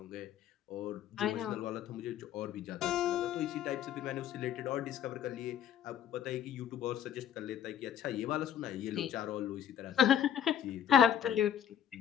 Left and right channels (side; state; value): right; quieter; 9.4 dB